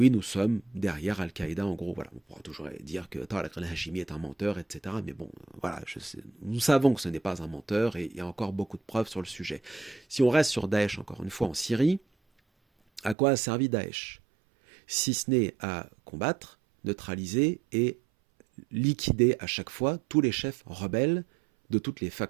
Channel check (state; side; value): drops out; left; at 13.2 s